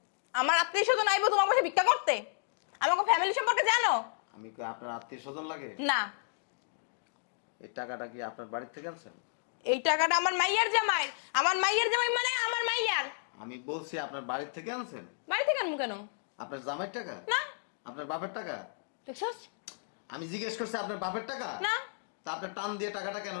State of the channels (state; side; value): silent; right; digital silence